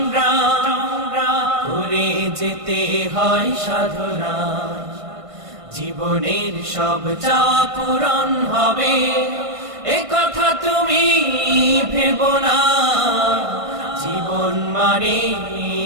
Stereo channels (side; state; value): left; late; 1.5 ms